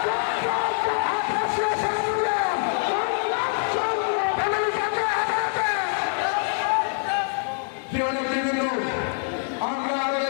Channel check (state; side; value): silent; right; 62 dB below the other